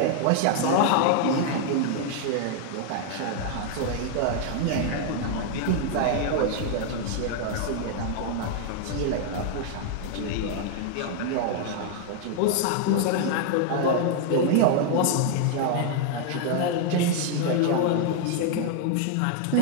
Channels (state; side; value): different; both; correlation 0.00